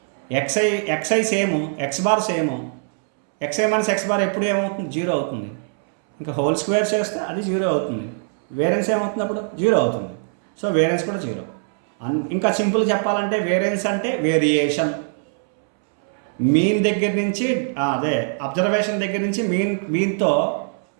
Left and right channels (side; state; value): left; silent; 64 dB below the other